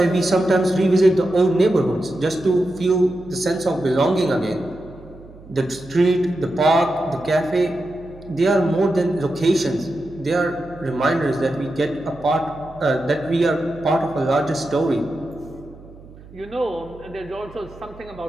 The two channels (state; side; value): noise; right; hum, 20 dB below the sound